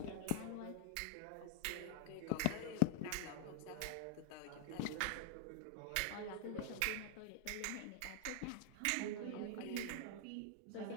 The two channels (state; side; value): different; both; correlation 0.00